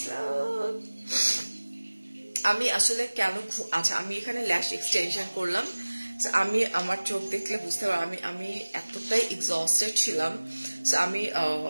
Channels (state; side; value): inverted; both; correlation -1.00